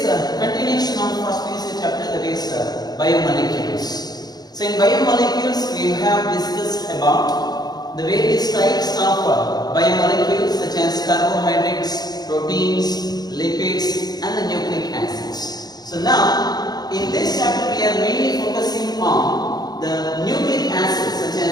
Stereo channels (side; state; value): right; late; 0.19 ms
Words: a continuation of first PUC chapter, that is biomolecules. So in biomolecules we have discussed about the various types of biomolecules such as carbohydrates, proteins, lipids and the nucleic acids. So now, in this chapter we are mainly focusing on the nucleic acids such